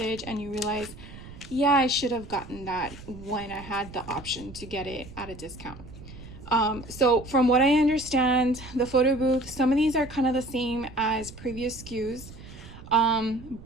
and you realize, yeah, I should have gotten that when I had the option to get it at a discount. So from what I understand, the photo booth, some of these are kind of the same as previous SKUs,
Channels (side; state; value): right; noise; rumble, 16 dB below the sound